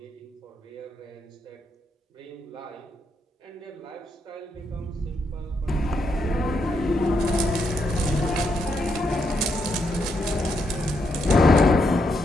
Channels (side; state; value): both; normal; correlation 0.79